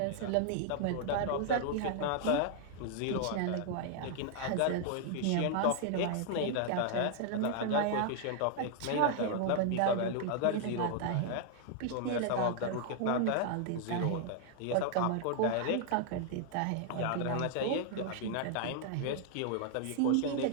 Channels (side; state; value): both; different; correlation 0.00